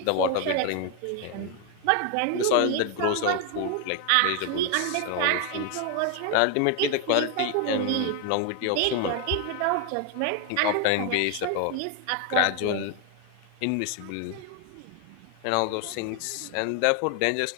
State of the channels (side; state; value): both; different; correlation 0.01